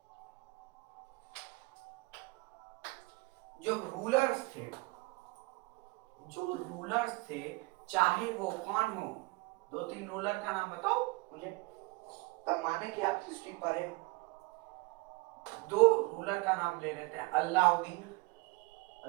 जो रूलर्स थे, जो रूलर्स थे, चाहे वो कौन हो, दो तीन रूलर का नाम बताओ मुझे, तब माने कि आप हिस्ट्री पढ़े हो। दो रूलर का नाम ले लेते हैं, अलाउद्दीन,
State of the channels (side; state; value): left; quieter; 25.0 dB